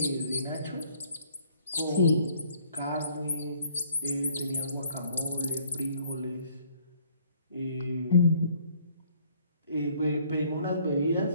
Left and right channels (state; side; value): inverted; both; correlation -0.61